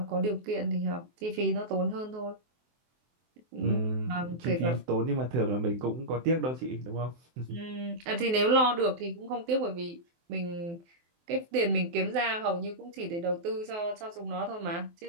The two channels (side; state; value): left; late; 23 ms